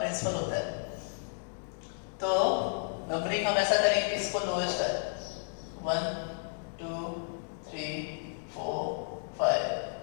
होता है। तो नंबरिंग हम ऐसा करेंगे कि इसको लोएस्ट है, 1 2 3 4 5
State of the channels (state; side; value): silent; right; digital silence